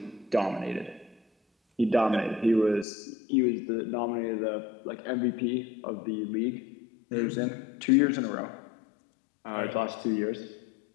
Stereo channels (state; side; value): drops out; right; at 2.9 s